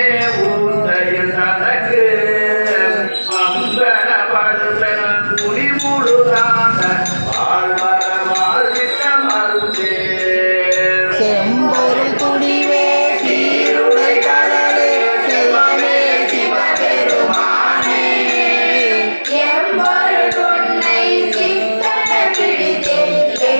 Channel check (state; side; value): inverted; both; correlation -1.00